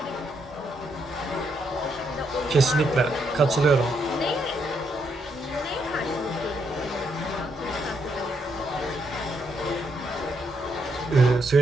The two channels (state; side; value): normal; both; correlation 0.77